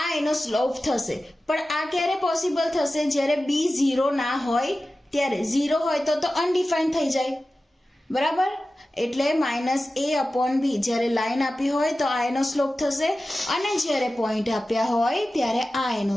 આ એનો સ્લોપ થશે. પણ આ ક્યારે પોસિબલ થશે? જ્યારે b 0 ના હોય ત્યારે. 0 હોય તો અનડિફાઇન્ડ થઈ જાય. બરાબર. એટલે માઇનસ એ અપોન બી, જ્યારે લાઈન આપી હોય તો આ એનો સ્લોપ થશે, અને જ્યારે પોઈન્ટ આપ્યા હોય ત્યારે આ એનો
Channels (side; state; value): both; normal; correlation 0.95